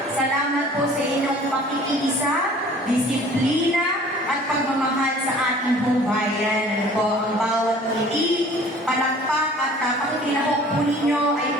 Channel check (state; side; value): normal; both; correlation 0.49